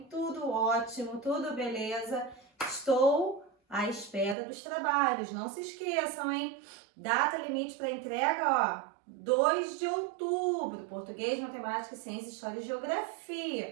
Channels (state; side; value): drops out; left; at 4.4 s